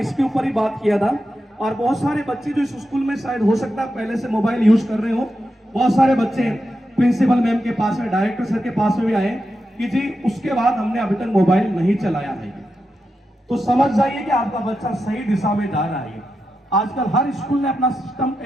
ऊपर ही बात किया था। और बहुत सारे बच्चे जो इस स्कूल में शायद हो सकता है पहले से मोबाइल यूज कर रहे हो, बहुत सारे बच्चे प्रिंसिपल मैम के पास में, डायरेक्टर सर के पास में भी आए कि जी उसके बाद हमने अभी तक मोबाइल नहीं चलाया है। तो समझ जाइए कि आपका बच्चा सही दिशा में जा रहा है। आजकल हर स्कूल ने अपना सिस्टम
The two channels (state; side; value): normal; both; correlation 0.88